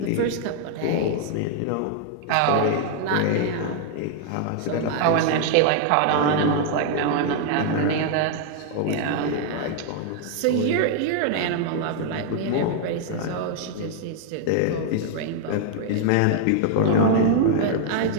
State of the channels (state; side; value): different; both; correlation 0.00